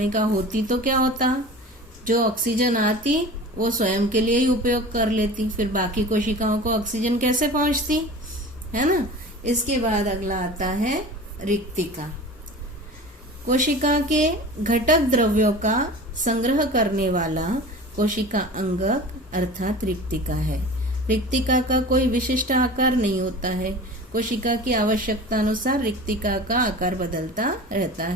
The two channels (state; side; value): normal; both; correlation 0.36